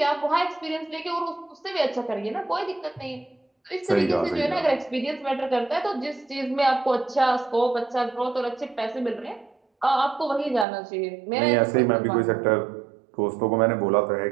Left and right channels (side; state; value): left; drops out; at 10.7 s